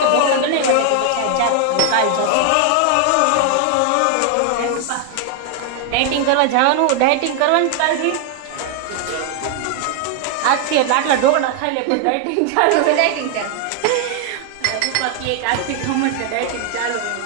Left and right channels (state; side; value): different; both; correlation 0.00